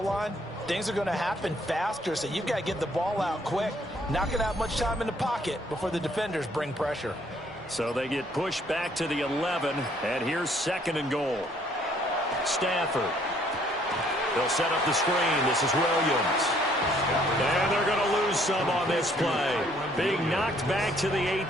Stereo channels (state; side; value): normal; both; correlation 0.64